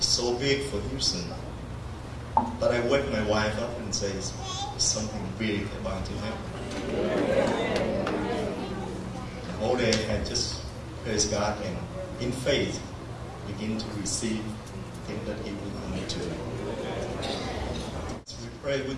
so big for Houston. But I wake my wife up and say, it's something big about to happen. The whole day I just praise God and in faith begin to receive the thing that He will commit to. So we pray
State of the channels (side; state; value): both; identical; correlation 1.00